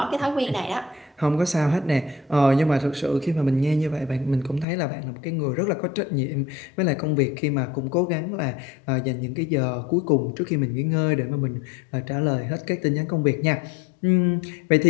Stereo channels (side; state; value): right; drops out; at 4.7 s